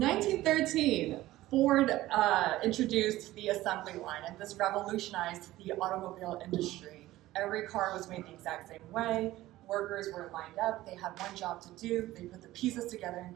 1913, Ford introduced the assembly line, and this revolutionized the automobile industry. Every car was made the exact same way. Workers were lined up. They had one job to do. They put the pieces together in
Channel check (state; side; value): quieter; left; 16.3 dB